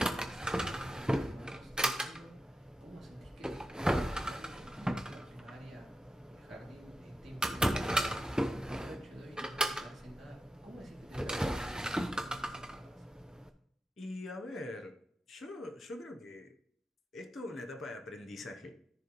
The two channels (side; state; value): both; normal; correlation 0.90